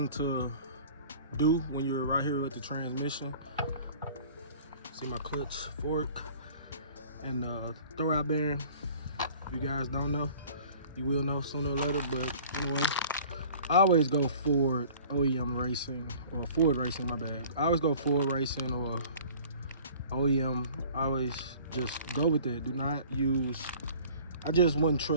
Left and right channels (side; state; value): both; inverted; correlation -0.48